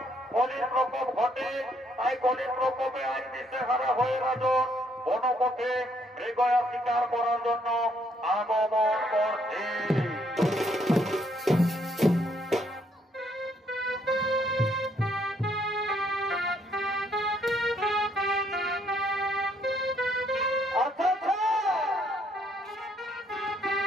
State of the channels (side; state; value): both; normal; correlation 0.70